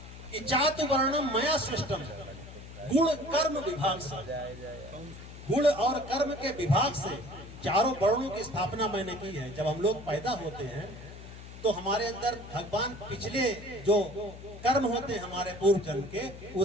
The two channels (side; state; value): left; noise; hum, 14 dB below the sound